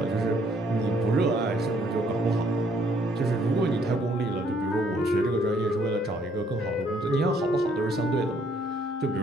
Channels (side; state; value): both; normal; correlation 0.66